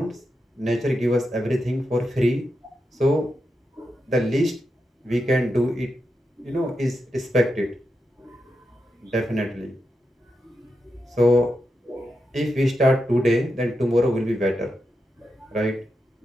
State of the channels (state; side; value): normal; both; correlation 0.87